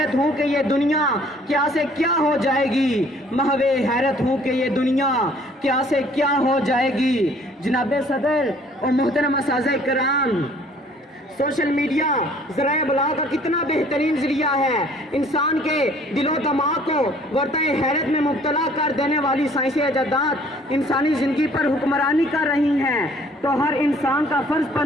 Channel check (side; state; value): both; normal; correlation 0.57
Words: ہوں کہ یہ دنیا کیا سے کیا ہو جائے گی، محو حیرت ہوں کہ یہ دنیا کیا سے کیا ہو جائے گی۔ جناب صدر اور محترم اساتذہ کرام، سوشل میڈیا ذرائع ابلاغ کا کتنا بہترین ذریعہ ہے۔ انسان کے دل و دماغ کو ورطۂ حیرت میں مبتلا کر دینے والی سائنسی ایجادات انسانی زندگی پر حکمرانی کر رہی ہیں، تو ہر انسان کا فرض